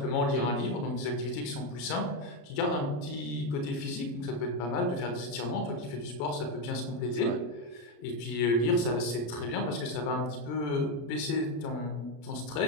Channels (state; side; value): late; right; 34 ms